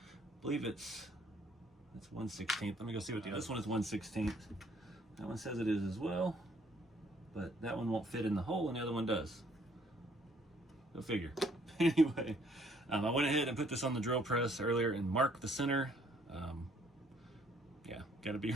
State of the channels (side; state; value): both; normal; correlation 0.64